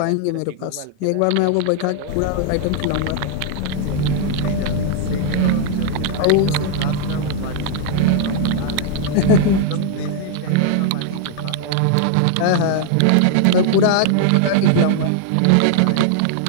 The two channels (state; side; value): different; both; correlation 0.00